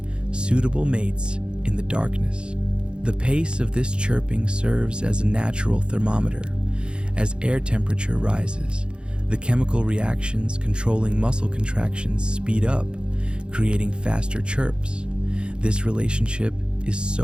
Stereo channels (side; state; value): left; late; 0.053 ms